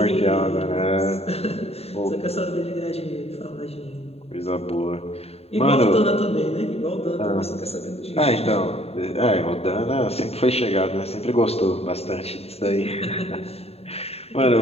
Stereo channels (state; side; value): late; right; 0.29 ms